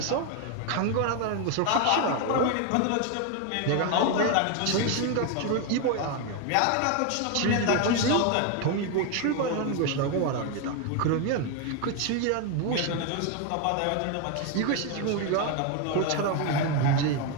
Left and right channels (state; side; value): different; both; correlation 0.01